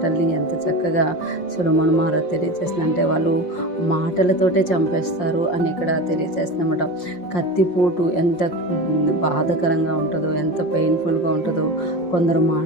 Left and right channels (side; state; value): right; late; 5.6 ms